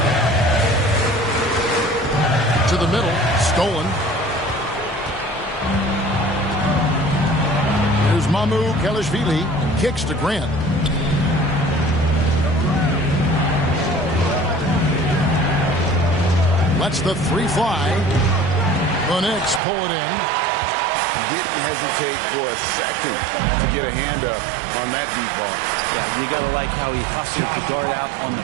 To the middle. Stolen. Here's Mamu Kelishvili. Kicks to Grant. Lets the 3 fly. The Knicks pull it in. Didn't hesitate for a second to get a hand up on that deep ball. Yeah, you got to like how he hustled the guard out on the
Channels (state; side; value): drops out; left; at 19.6 s